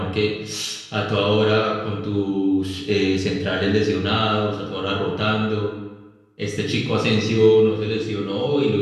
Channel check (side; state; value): both; identical; correlation 1.00